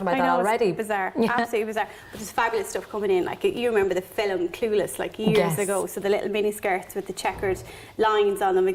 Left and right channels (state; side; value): identical; both; correlation 1.00